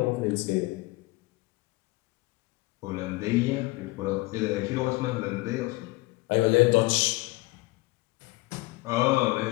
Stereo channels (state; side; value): quieter; right; 21.3 dB